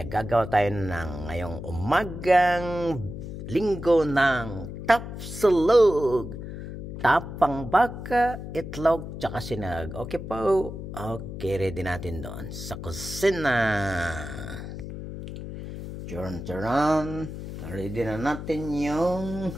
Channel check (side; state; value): left; noise; hum, 9 dB below the sound